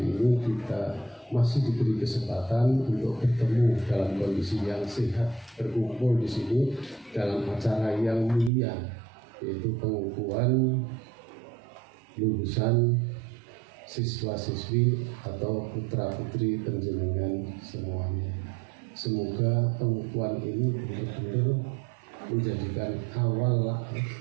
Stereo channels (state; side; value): drops out; left; at 8.5 s